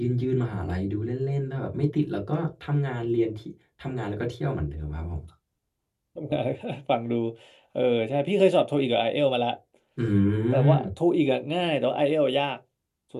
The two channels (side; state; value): both; identical; correlation 1.00